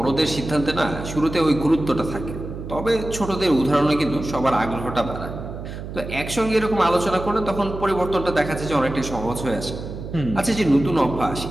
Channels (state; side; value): noise; right; hum, 9 dB below the sound